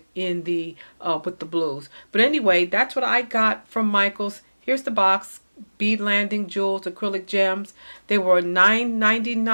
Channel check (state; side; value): inverted; both; correlation -1.00